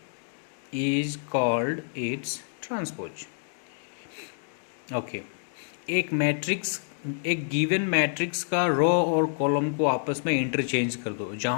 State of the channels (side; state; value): right; silent; digital silence